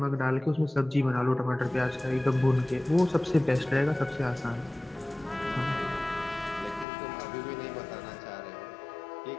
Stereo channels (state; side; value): drops out; right; at 6.9 s